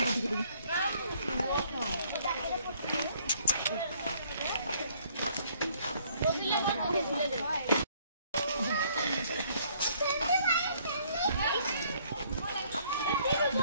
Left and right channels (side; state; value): both; inverted; correlation -0.63